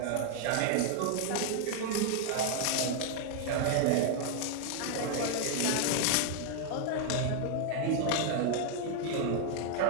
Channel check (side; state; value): both; different; correlation 0.00